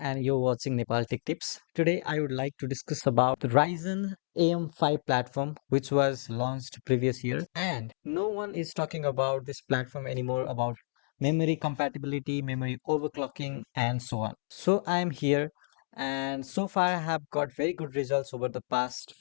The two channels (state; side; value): silent; right; digital silence